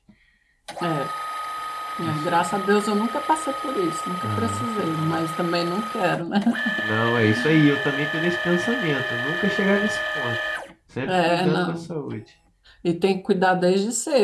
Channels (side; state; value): both; identical; correlation 1.00